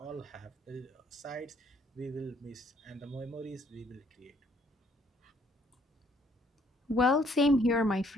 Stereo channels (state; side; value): normal; both; correlation 0.65